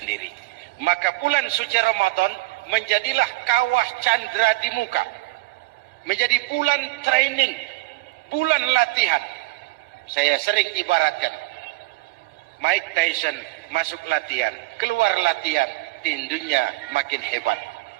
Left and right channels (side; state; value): left; quieter; 21.7 dB